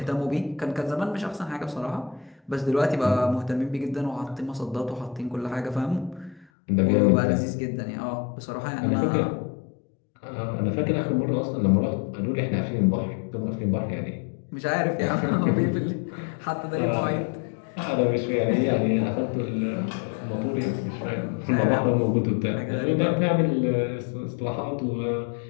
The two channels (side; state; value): right; drops out; at 6.5 s